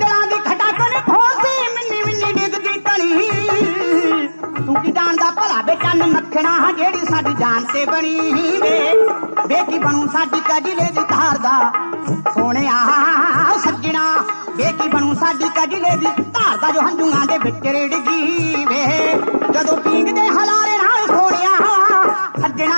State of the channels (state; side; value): inverted; both; correlation -1.00